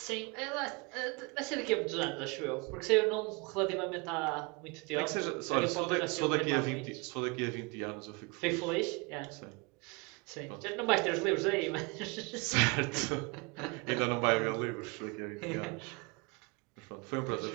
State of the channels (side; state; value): left; quieter; 28.8 dB